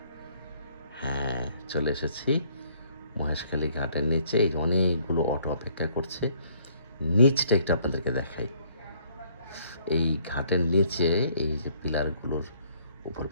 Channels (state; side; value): inverted; both; correlation -0.63